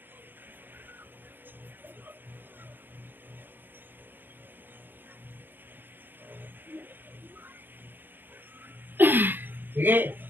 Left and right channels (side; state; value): left; late; 0.095 ms